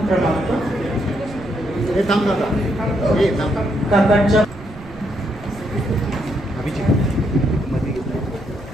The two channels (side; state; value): right; noise; rumble, 17 dB below the sound